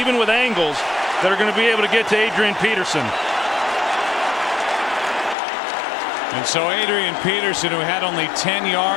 with angles, that are going to be able to get to Adrian Peterson. And so Adrian Peterson, who had only 10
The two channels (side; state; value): right; drops out; at 5.4 s